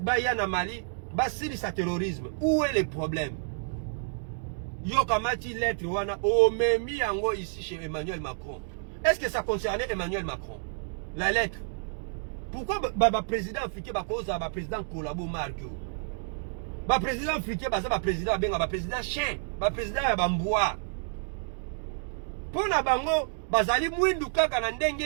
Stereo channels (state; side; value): silent; left; digital silence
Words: baya na Mali, ba sili sa terrorisme. Où est le problème? Yo kamati lettre wana o memi yango ici chez Emmanuel Macron. Est-ce que ça concernait Emmanuel Macron? La lettre. Pourquoi le président africain cause le président collabo Marco? Le président africain le président le président chien, le président Bamboua. Pour na bango, bazali mwindu kaka na ndenge